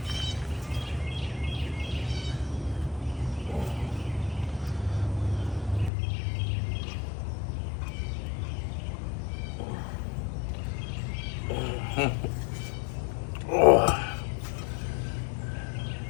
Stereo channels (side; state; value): right; drops out; at 5.9 s